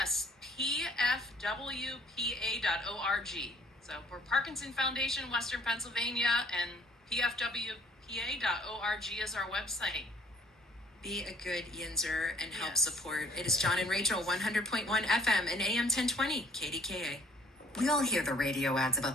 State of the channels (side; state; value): both; normal; correlation 0.58